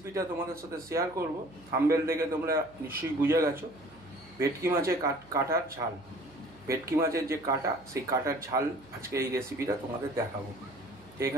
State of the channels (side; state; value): right; noise; hum, 25 dB below the sound